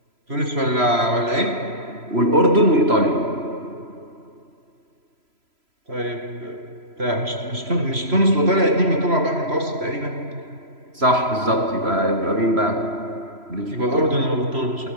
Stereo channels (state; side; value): late; left; 3.0 ms